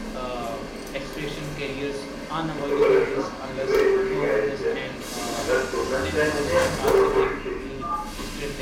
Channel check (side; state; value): both; identical; correlation 1.00